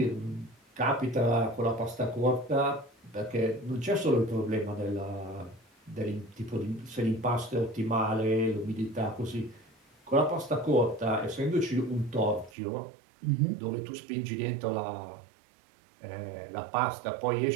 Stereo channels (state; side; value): drops out; left; at 12.5 s